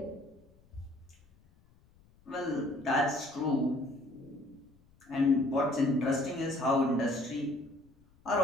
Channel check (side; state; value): left; noise; rumble, 30 dB below the sound